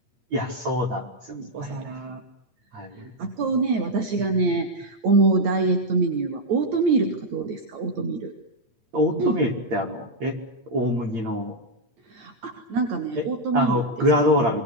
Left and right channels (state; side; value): late; left; 8.5 ms